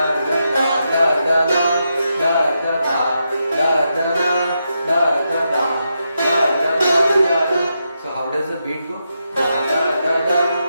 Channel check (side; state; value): both; inverted; correlation -0.84